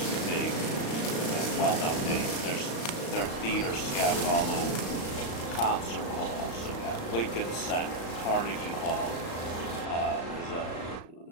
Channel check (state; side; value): late; right; 35 ms